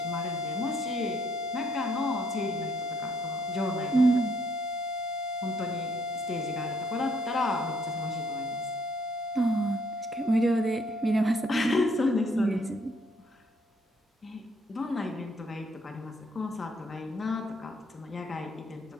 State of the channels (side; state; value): both; normal; correlation 0.68